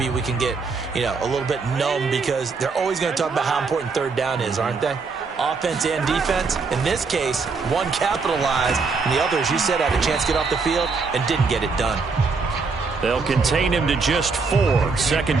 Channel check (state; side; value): quieter; left; 4.6 dB